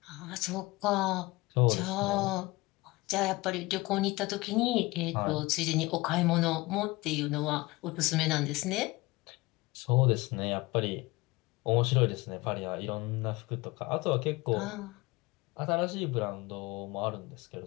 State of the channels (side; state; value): right; quieter; 21.9 dB